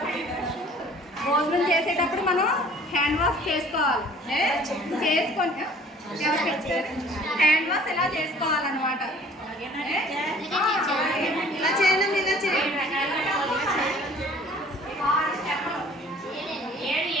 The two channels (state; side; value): normal; both; correlation 0.52